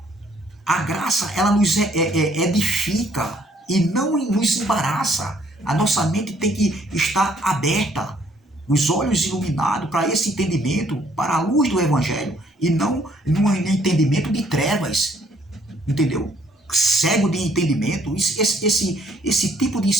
A graça, ela nos edifica e não nos embaraça. A nossa mente tem que estar aberta, os olhos iluminados para esse entendimento, para a luz do Evangelho, e não num entendimento de trevas, entendeu? Cego de entendimento, esse tipo de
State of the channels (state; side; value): normal; both; correlation 0.64